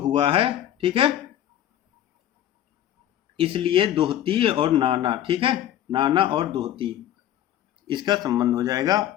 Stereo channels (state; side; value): quieter; right; 11.9 dB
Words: हुआ है। ठीक है, इसलिए दोहती और नाना। ठीक है, नाना और दोहती इसका संबंध हो